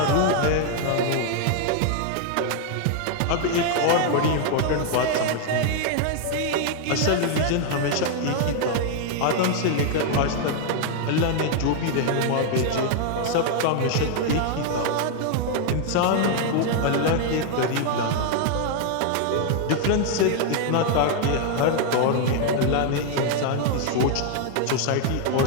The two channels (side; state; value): both; different; correlation 0.00